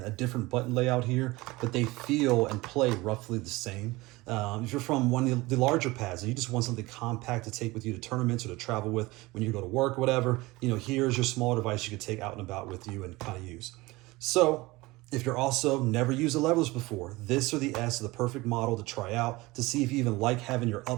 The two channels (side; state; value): left; quieter; 21.2 dB